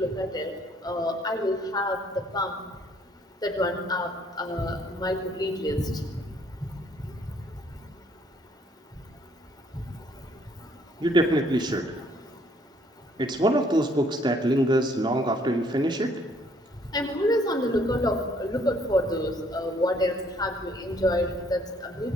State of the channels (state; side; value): normal; both; correlation 0.64